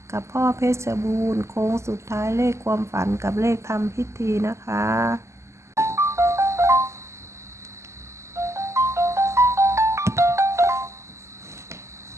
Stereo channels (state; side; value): late; left; 0.13 ms